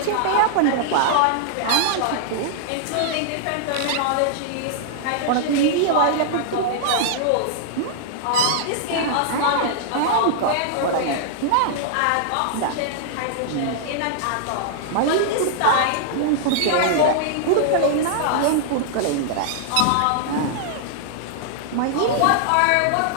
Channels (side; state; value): both; different; correlation -0.01